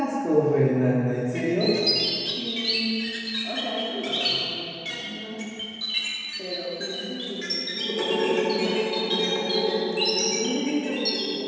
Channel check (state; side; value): identical; both; correlation 1.00